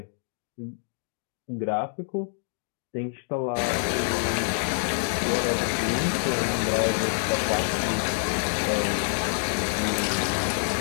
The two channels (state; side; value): silent; right; digital silence